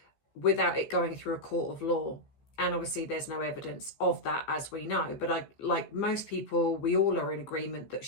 without it going through a court of law. And obviously there's no evidence of that, as we know. But like most people, we all are in agreement that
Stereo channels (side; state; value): right; late; 14 ms